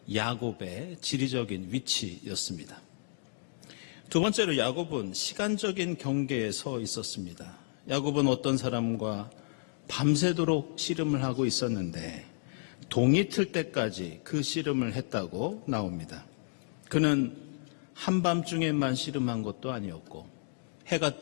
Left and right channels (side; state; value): right; silent; digital silence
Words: 야곱의 지리적인 위치였습니다. 두 번째로 야곱은 시간적인 경계에 서 있었습니다. 야곱은 어떤 사람과 밤새도록 씨름을 하고 있었는데 동이 틀 때까지 그 씨름을 했다고 나옵니다. 그는 한밤중에만 씨름한 것도 아니었고 해가